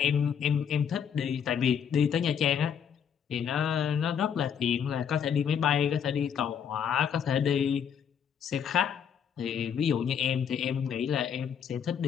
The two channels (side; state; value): right; quieter; 8.0 dB